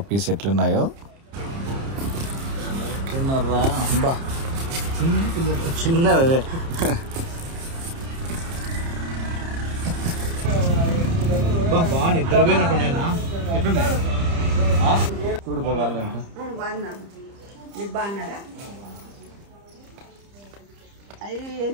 ఎట్లున్నాయో. ఎట్లున్నారా? అబ్బా చిన్నదే. బాగా నిద్రపోయినట్టున్నాయినా. ఎట్లున్నాయి చూడు పోవాలంట. మీరు బాగున్నారా? అవి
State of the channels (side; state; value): left; late; 30 ms